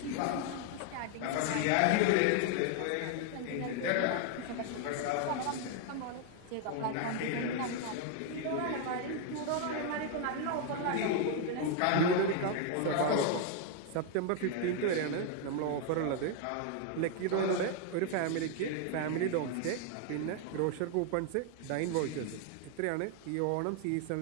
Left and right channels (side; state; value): both; different; correlation 0.00